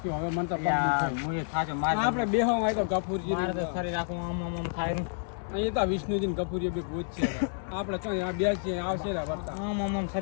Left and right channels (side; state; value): right; silent; 58 dB below the other